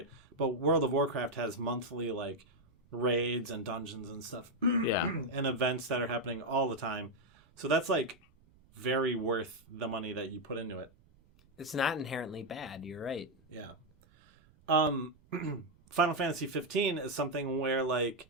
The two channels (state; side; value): noise; right; rumble, 29 dB below the sound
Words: But World of Warcraft has monthly like raids and dungeons and stuff, and events that are happening all the time. So that's like very worth the money that you put into it. It's not inherently bad. You're right. Yeah. Final Fantasy 15 is something where like